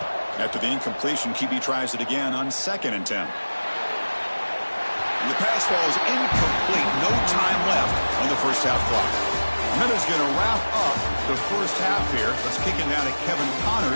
After the incompletion, QB tries it again on 2nd and 10. And the pass falls incomplete. No time left on the first half clock. And that is going to wrap up the first half here. Let's kick it down to Kevin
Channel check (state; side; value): inverted; both; correlation -1.00